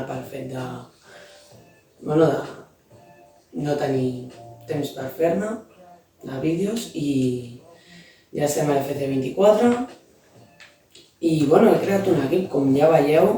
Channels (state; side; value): identical; both; correlation 1.00